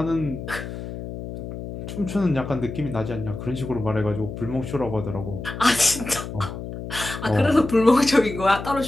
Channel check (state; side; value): noise; left; hum, 9 dB below the sound